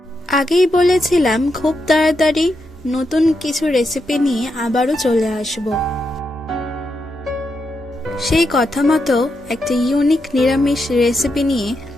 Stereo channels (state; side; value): normal; both; correlation 0.84